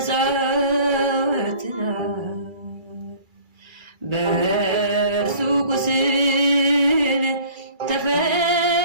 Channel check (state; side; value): late; left; 2.3 ms